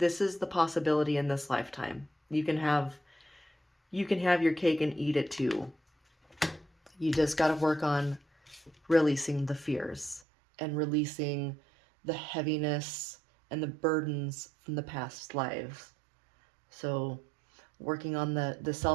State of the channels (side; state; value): left; drops out; at 10.2 s